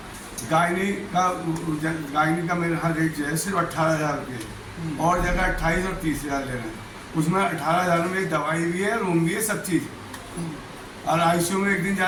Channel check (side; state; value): both; identical; correlation 1.00